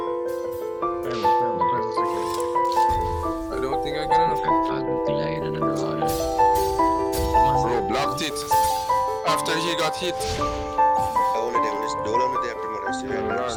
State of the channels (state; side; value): identical; both; correlation 1.00